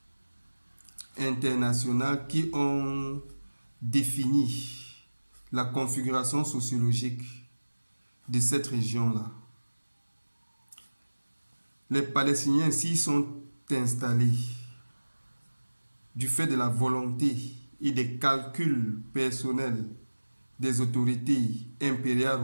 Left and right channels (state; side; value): inverted; both; correlation -1.00